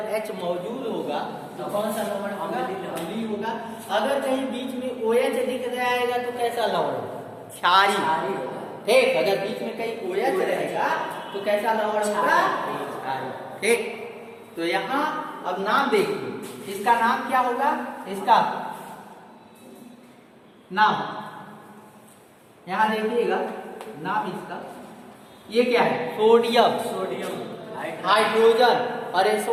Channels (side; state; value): both; identical; correlation 1.00